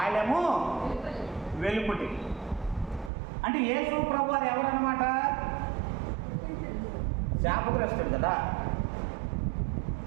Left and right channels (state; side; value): drops out; left; at 3.1 s